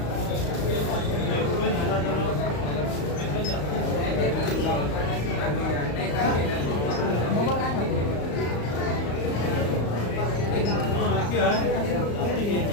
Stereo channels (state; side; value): late; right; 35 ms